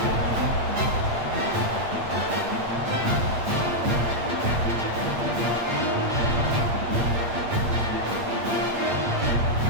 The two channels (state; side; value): late; left; 8.5 ms